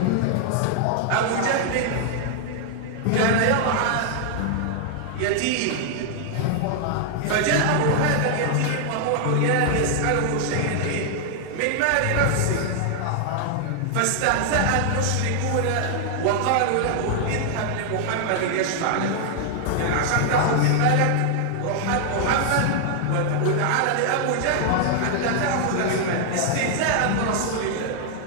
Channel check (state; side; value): different; both; correlation 0.00